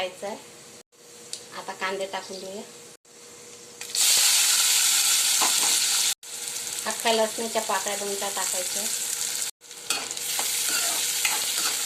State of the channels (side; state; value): both; identical; correlation 1.00